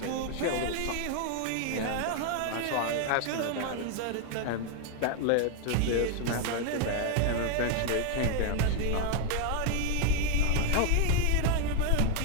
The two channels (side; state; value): both; different; correlation 0.00